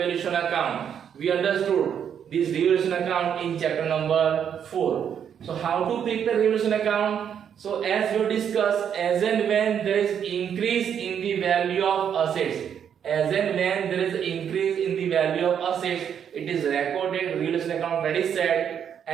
account. We understood this revaluation account in chapter number 4. So how to prepare revaluation account? So as we discussed, as and when there is increase in the value of assets, as and when there is increase in the value of assets, it is recorded revaluation account credit side,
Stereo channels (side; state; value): left; quieter; 8.4 dB